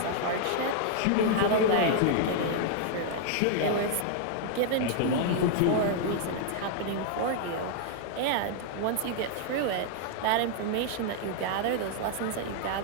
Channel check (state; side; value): different; both; correlation -0.01